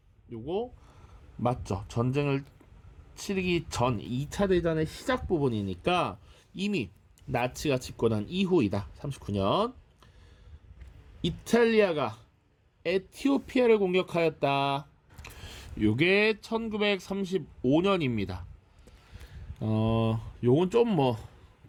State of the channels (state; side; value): identical; both; correlation 1.00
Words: 요거 맞죠? 전쟁을 치르기 전 2차 대전의 시작 부분이니까 이미 나치가 집권한 이후이다. 39년. 이탈리아가 에티오피아를 공격하였다. 요게 1935년입니다. 요건 좀